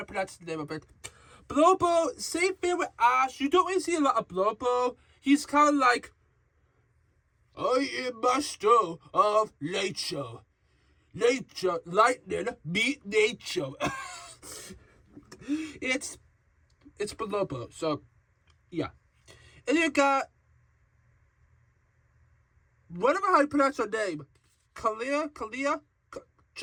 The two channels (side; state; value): both; identical; correlation 1.00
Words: pronounce the name of it. Bolobo, same thing with Ash. You don't really see a lot of Bolobo. He's kind of like, I am master of nature. Nature, lightning, meet nature. It's Bolobo, so, yeah. And you got, whatever how you pronounce her name, Camilla.